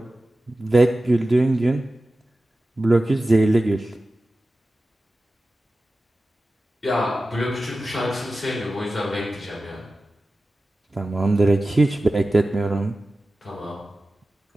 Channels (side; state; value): both; normal; correlation 0.95